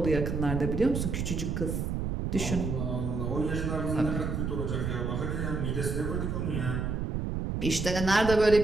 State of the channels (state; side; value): noise; right; rumble, 2 dB below the sound